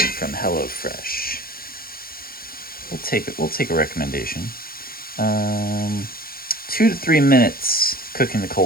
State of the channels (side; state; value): right; late; 0.43 ms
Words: HelloFresh? We'll take a recommendation. 2 to 3 minutes cooking the